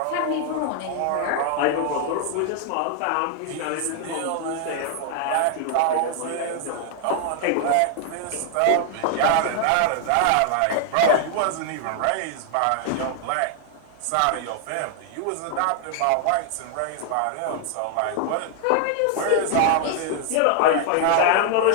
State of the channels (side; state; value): both; different; correlation 0.00